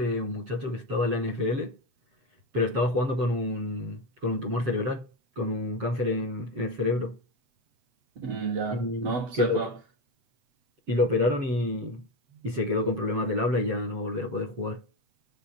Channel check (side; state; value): left; late; 8.0 ms